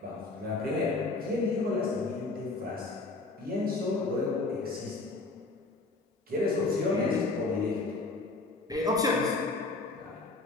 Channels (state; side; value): quieter; right; 3.4 dB